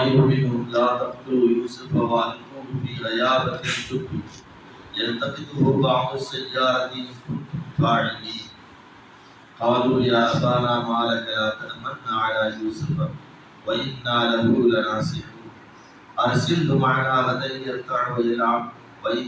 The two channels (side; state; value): both; identical; correlation 1.00